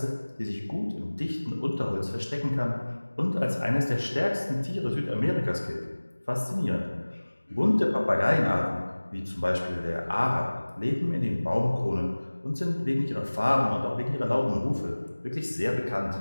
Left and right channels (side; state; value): both; inverted; correlation -1.00